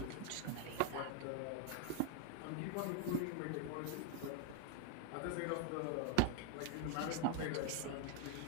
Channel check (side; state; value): both; different; correlation 0.00